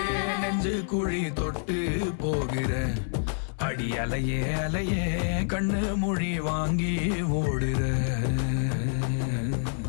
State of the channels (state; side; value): silent; right; 58 dB below the other